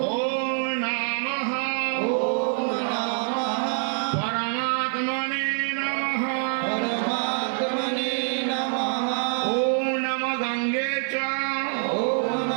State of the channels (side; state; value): left; silent; digital silence